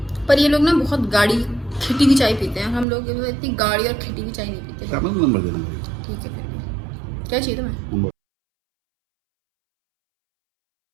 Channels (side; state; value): left; drops out; at 2.9 s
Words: पर ये लोग ना बहुत गाढ़ी खिटी की चाय पीते हैं, हम लोग इतनी गाढ़ी और खिटी की चाय नहीं पीते। नंबर देना। ठीक है, फिर भी क्या चाहिए तुम्हें?